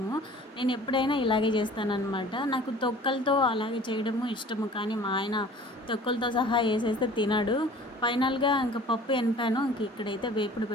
నేను ఎప్పుడైనా ఇలాగే చేస్తానన్నమాట. నాకు తొక్కలతో అలాగే చేయడము ఇష్టము, కానీ మా ఆయన తొక్కలతో సహా వేసేస్తే తినడు. ఫైనల్గా ఇంకా పప్పు ఎనిపాను. ఇంక ఇక్కడైతే వేపుడు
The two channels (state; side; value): normal; both; correlation 0.47